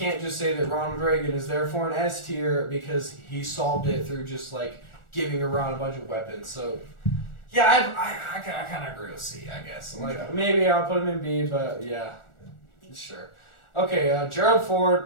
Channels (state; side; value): late; right; 1.4 ms